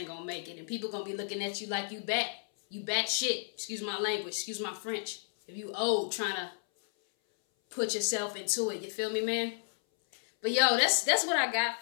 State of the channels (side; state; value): right; silent; 56 dB below the other